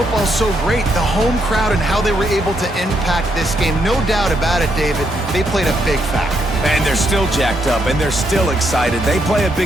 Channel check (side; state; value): both; normal; correlation 0.77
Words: so great, the home crowd and how they were able to impact this game. No doubt about it, David. They played a big factor. And they're still jacked up, and they're still excited. They play a